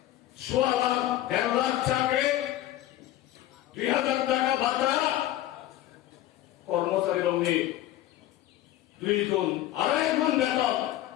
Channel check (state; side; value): quieter; right; 13.9 dB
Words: 1.5 লাখ চাকরি 2,000 টাকা ভাতা কর্মচারী অগ্নি 2 গুণ 2.5 গুণ বেতন